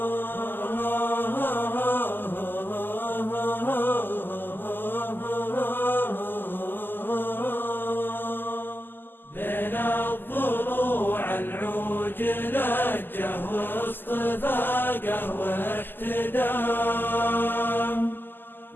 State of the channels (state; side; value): late; right; 0.093 ms